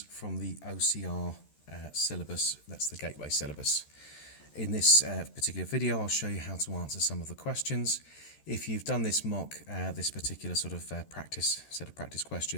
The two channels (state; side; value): late; right; 13 ms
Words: from the OCR syllabus. That's the Gateway syllabus. In this particular video, I'll show you how to answer some of the questions. If you've done this mock, this particular sort of set of practice